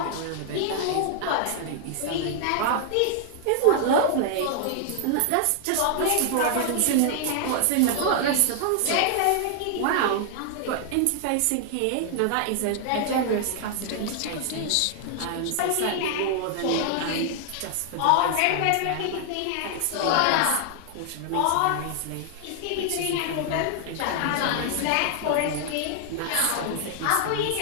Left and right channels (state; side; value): different; both; correlation 0.00